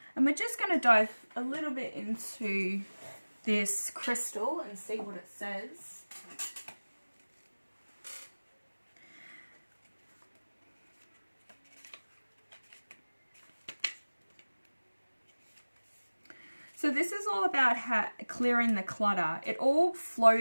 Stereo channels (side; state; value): both; inverted; correlation -1.00